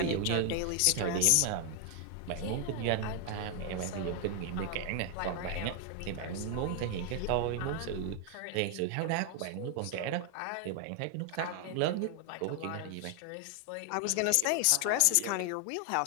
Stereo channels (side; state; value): both; different; correlation 0.00